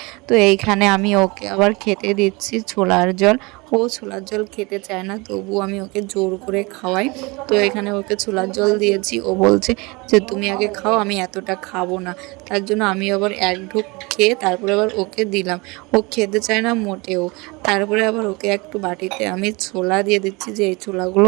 তো এইখানে আমি ওকে আবার খেতে দিচ্ছি ছোলার জল। ও ছোলার জল খেতে চায় না, তবু আমি ওকে জোর করে খাওয়াই। তো এখানে ওকে ছোলার জল দিয়েছি, ও বলছে যে তুমি আগে খাও, আমি এতটা খাবো না। তার জন্য আমি আবার এক ঢোক খেয়ে তারপরে আবার ওকে দিলাম। ও খেতে চায় না মোটেও। তারপরে আবার ওকে একটু বাটিতে আমি ছোলা দিয়ে দিচ্ছি যে এই ছোলাগুলো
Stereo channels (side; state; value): left; quieter; 25.8 dB